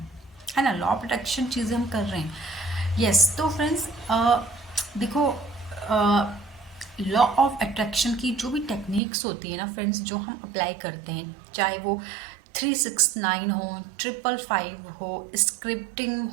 ना। लॉ ऑफ अट्रैक्शन चीज़ें हम कर रहे हैं। यस, तो फ्रेंड्स देखो, लॉ ऑफ अट्रैक्शन की जो भी टेक्निक्स होती है ना फ्रेंड्स, जो हम अप्लाई करते हैं, चाहे वो 369 हो, 555 हो, स्क्रिप्टिंग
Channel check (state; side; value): drops out; left; at 9.0 s